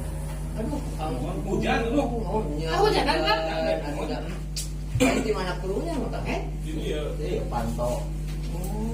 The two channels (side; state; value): both; identical; correlation 1.00